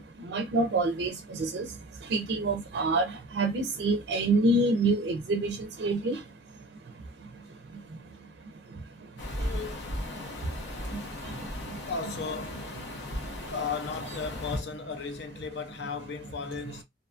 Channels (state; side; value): normal; both; correlation 0.37